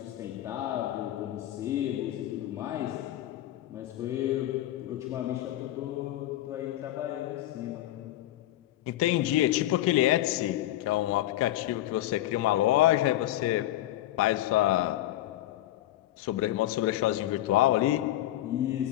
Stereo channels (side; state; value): right; quieter; 14.4 dB